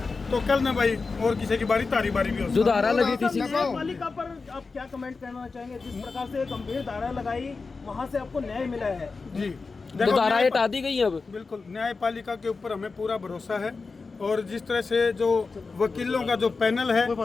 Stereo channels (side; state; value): right; quieter; 4.3 dB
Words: तो कल न भाई और किसी की बारी, तारी बारी भी हो। जो धारा लगी थी न्यायपालिका पर आप क्या कमेंट करना चाहेंगे? जिस प्रकार से गंभीर धारा लगाई, वहाँ से आपको न्याय मिला है जी, जो धाराएं हटा दी गई अब। बिल्कुल, न्यायपालिका के ऊपर हमें पूरा भरोसा है। और जिस तरह से जो वकीलों का जो पैनल है,